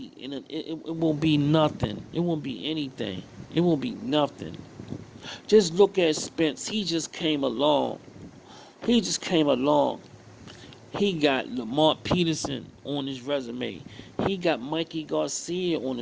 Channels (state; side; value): identical; both; correlation 1.00